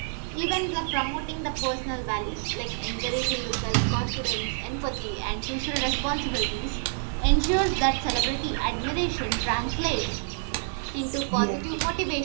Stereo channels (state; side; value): silent; left; digital silence